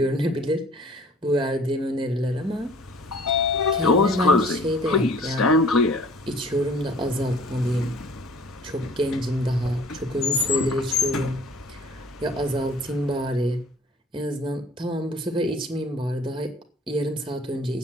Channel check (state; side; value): normal; both; correlation 0.51